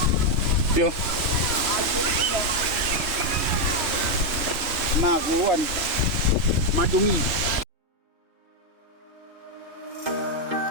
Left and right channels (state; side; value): late; left; 3.4 ms